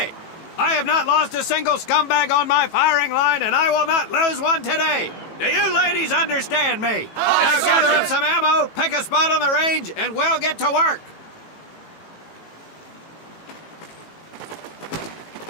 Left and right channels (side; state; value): right; late; 18 ms